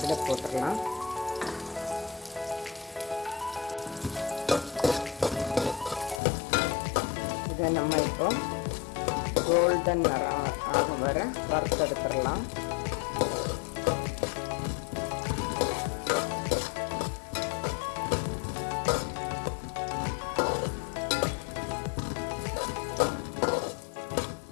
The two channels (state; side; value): drops out; right; at 6.2 s